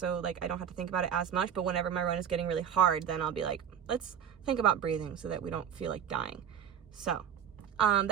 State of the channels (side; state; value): left; quieter; 8.5 dB